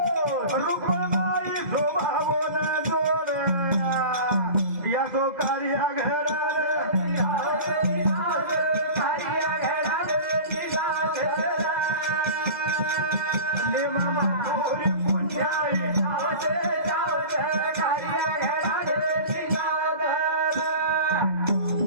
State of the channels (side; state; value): left; late; 2.0 ms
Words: रुक्मबाई शोभावोन जोड याचो कार्य घरार नेमा माधुरी पुण्याई